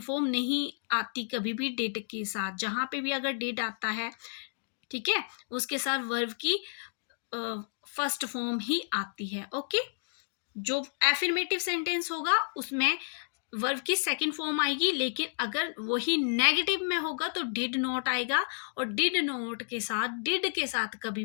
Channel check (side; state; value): right; silent; digital silence